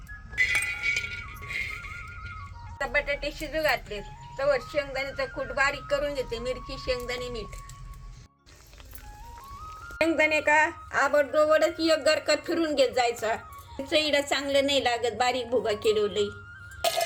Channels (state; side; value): identical; both; correlation 1.00